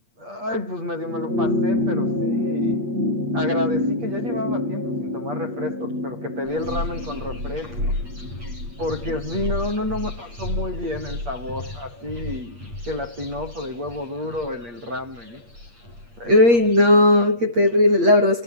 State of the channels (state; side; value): late; left; 8.5 ms